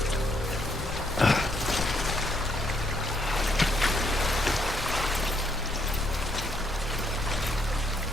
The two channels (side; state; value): both; normal; correlation 0.73